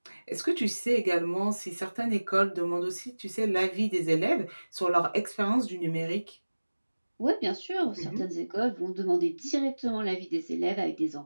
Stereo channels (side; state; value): both; inverted; correlation -1.00